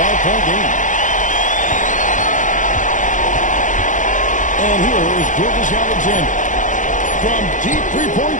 5-point game. And here is Gilgeous Alexander from deep 3-point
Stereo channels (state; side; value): late; right; 0.37 ms